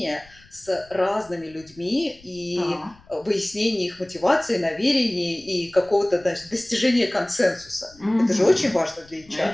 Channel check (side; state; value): left; noise; rumble, 26 dB below the sound